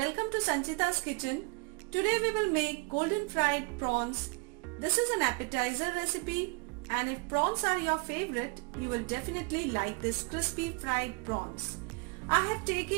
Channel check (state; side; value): quieter; left; 31.1 dB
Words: to Sanchita's kitchen. Today we will make golden fried prawns. This is an appetizer recipe, and if prawns are your favorite, you will definitely like this crispy fried prawns. I have